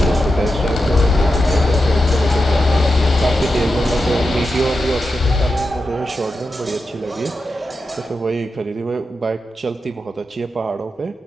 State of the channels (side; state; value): both; normal; correlation 0.89